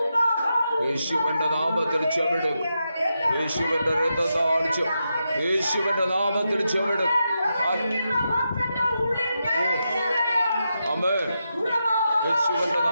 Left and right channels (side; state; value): both; inverted; correlation -0.86